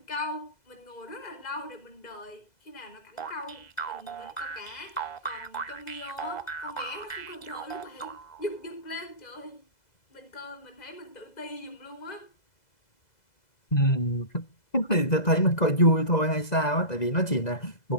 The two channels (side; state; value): right; late; 2.0 ms